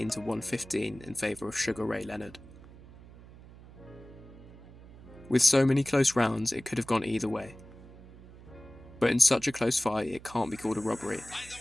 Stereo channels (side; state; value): right; noise; hum, 19 dB below the sound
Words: to 115 in favour of Sugar Ray Leonard. With so many close rounds it could have gone either way. But in such a close fight it can't be called a robbery.